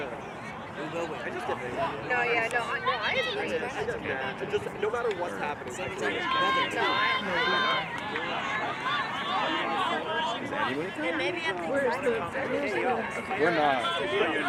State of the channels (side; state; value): both; identical; correlation 1.00